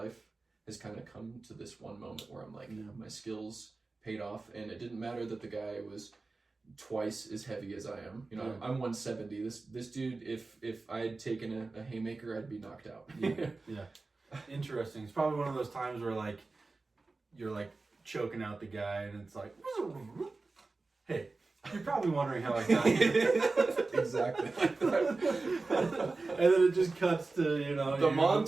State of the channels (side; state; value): left; quieter; 3.6 dB